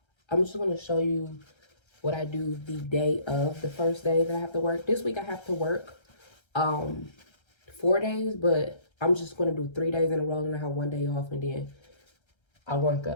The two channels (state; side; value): late; right; 1.3 ms